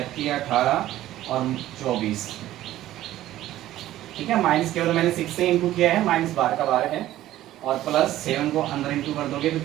3 18 और 24। ठीक है, माइनस केवल मैंने 6 से इंटू किया है, -12 का 12 है, और प्लस 7 को अंदर इंटू कर दोगे तो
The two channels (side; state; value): left; quieter; 14.2 dB